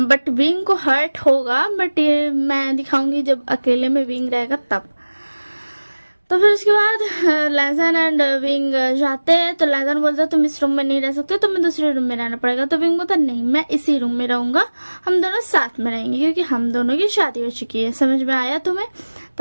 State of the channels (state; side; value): inverted; both; correlation -1.00